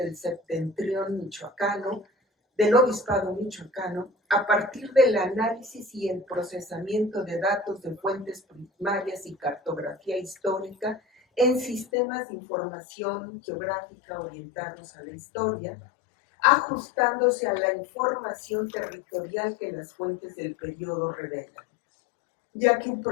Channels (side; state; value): right; drops out; at 11.9 s